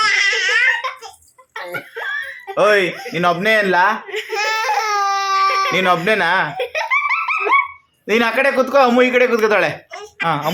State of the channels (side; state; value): both; identical; correlation 1.00